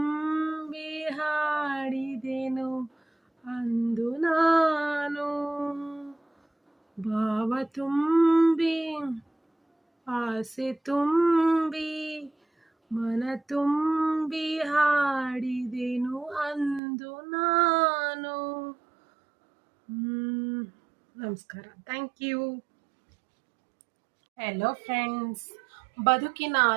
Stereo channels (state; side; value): drops out; left; at 16.8 s